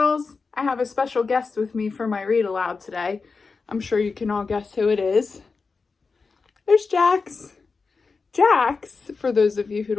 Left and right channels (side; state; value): right; quieter; 4.6 dB